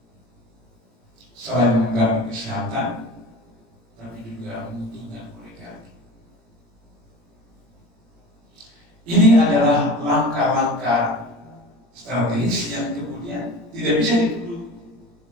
Selain mengganggu kesehatan, tapi juga menguntungkan oligarki. Ini adalah langkah-langkah strategis yang kemudian tidak bisa dituduh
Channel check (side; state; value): left; late; 17 ms